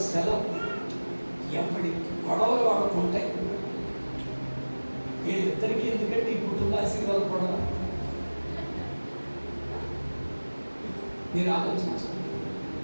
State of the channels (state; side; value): inverted; both; correlation -1.00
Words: సెలవు ఎప్పటి గొడవలు వాళ్ళకు ఉంటాయి. వీళ్ళిద్దరికీ ఎందుకంటే ఈ కుటుంబ ఆశీర్వాదం గొడవ మీరు ఆలోచించండి.